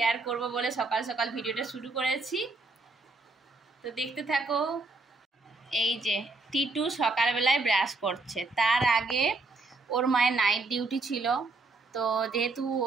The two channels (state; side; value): quieter; left; 3.4 dB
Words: করব বলে সকাল সকাল ভিডিওটা শুরু করেছি। তো দেখতে থাকো। এই যে টিটু সকালবেলায় ব্রাশ করছে, তার আগে ওর মায়ের নাইট ডিউটি ছিল। তো যেহেতু